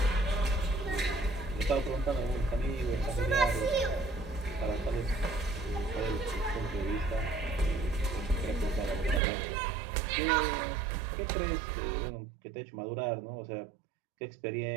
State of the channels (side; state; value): left; drops out; at 9.2 s